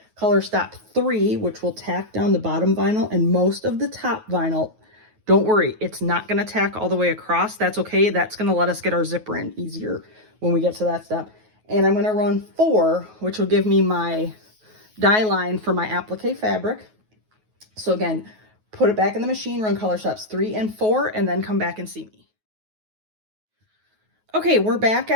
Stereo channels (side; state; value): left; late; 9.3 ms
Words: color stop 3, which will tack down the bottom vinyl and most of the top vinyl. Don't worry, it's not going to tack all the way across. That's okay. That's going to let us get our zipper in easier when we get to that step. And I'm going to run 4, which will give me my die line for my applique fabric. So again, put it back in the machine, run color stops 3 and 4, and then come back and see me. Okay, we're back